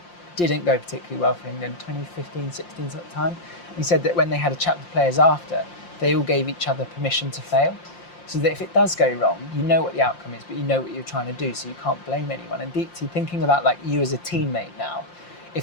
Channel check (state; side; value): late; right; 5.7 ms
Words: didn't go particularly well for England, 2015, 16 sort of time. And he said that when they had a chat with the players after, they all gave each other permission to fail, so that if it does go wrong, you know what the outcome is, but you know what you're trying to do, so you can't blame anyone. And Deepti, thinking about like you as a teammate now,